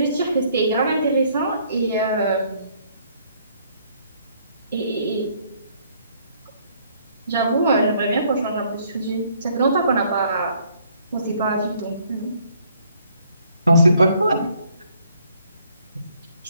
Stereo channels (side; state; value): both; inverted; correlation -0.65